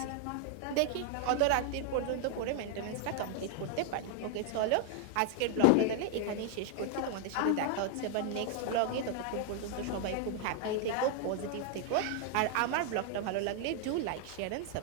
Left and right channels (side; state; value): both; different; correlation 0.00